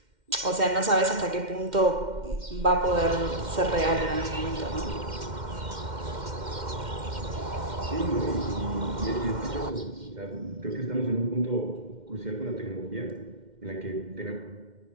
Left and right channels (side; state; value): left; late; 2.1 ms